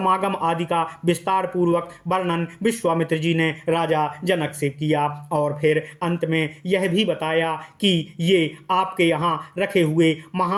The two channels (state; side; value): identical; both; correlation 1.00